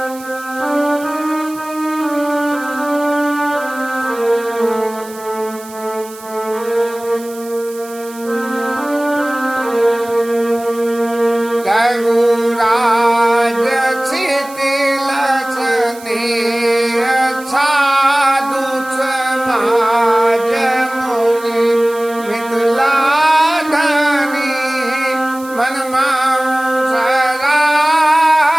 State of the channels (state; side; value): noise; right; hiss, 19 dB below the sound